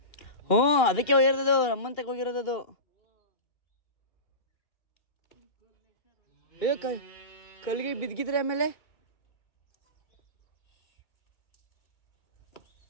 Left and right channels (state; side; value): late; right; 2.4 ms